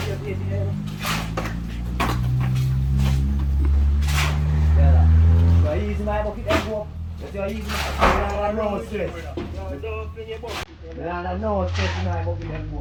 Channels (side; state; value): both; identical; correlation 1.00